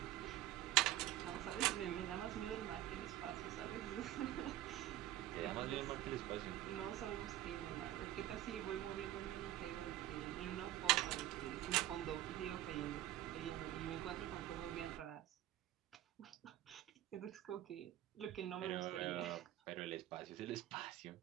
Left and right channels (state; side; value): quieter; left; 13.6 dB